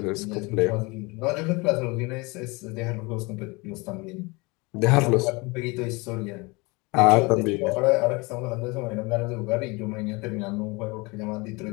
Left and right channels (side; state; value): right; quieter; 26.1 dB